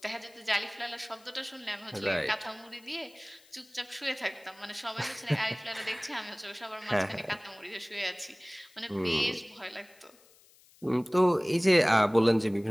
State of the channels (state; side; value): noise; left; hiss, 27 dB below the sound